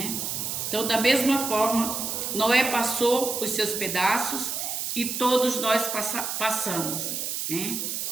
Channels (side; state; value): right; noise; hiss, 3 dB below the sound